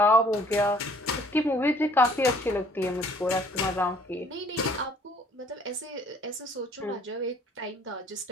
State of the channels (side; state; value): both; normal; correlation 0.57